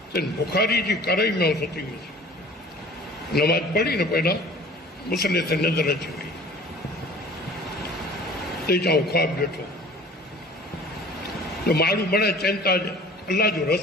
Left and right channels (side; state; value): both; normal; correlation 0.46